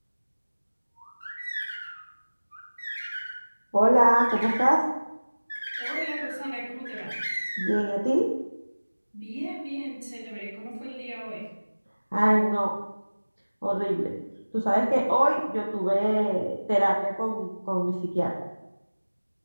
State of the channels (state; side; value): inverted; both; correlation -1.00